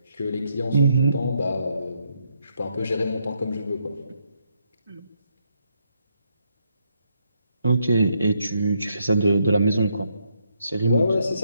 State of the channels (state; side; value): inverted; both; correlation -0.77